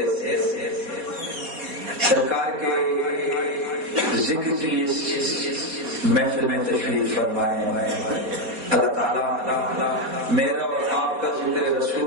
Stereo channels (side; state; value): left; late; 4.2 ms